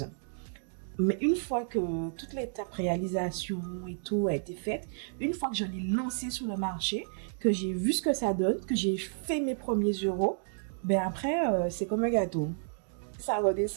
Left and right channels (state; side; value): silent; left; digital silence